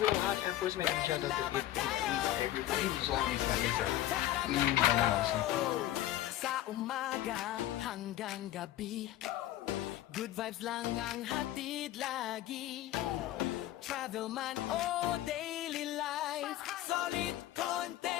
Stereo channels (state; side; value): quieter; right; 14.0 dB